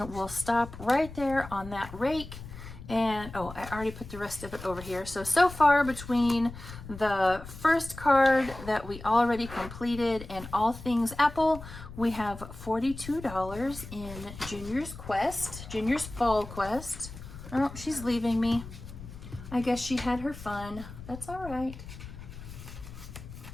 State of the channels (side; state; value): left; noise; rumble, 13 dB below the sound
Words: we'll stop right there on that rake. And, oh, I already put the rest of it over here. So far between the first card that we already completed and All Things Apple, we have $42 in Junior's Quest, Junior's Fall Quest. Oh, she's leaving me. I guess she had her fun. That's all right.